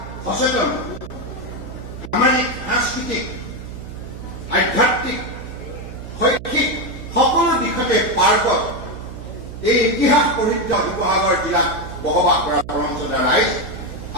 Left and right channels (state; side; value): noise; right; hum, 11 dB below the sound